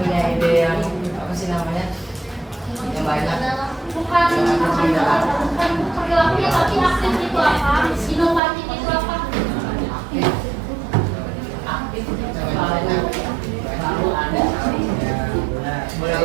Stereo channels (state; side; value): drops out; left; at 8.4 s